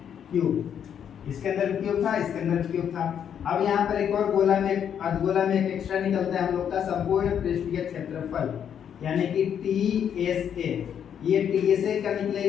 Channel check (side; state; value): right; quieter; 8.6 dB